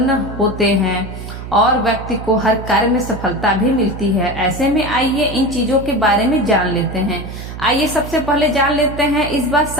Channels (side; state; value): right; noise; hum, 10 dB below the sound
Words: होते हैं और व्यक्ति को हर कार्य में सफलता भी मिलती है। ऐसे में आइए इन चीजों के बारे में जान लेते हैं। आइए सबसे पहले जान लेते हैं इस बार